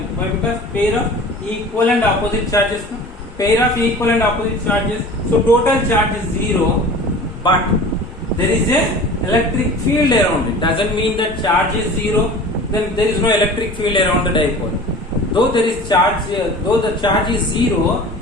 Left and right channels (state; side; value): normal; both; correlation 0.40